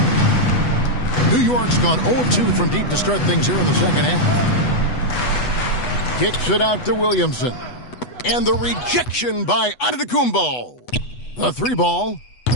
New York's gone 0 of 2 from deep to start things here in the second half. Kicks it out to Williamson. And the rejection by Antetokounmpo. The three ball.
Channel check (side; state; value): right; late; 8.1 ms